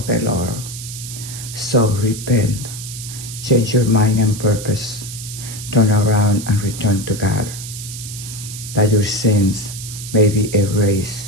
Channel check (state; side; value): noise; right; hiss, 10 dB below the sound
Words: the Lord. So repent, change your mind and purpose, turn around and return to God, that your sins may be erased,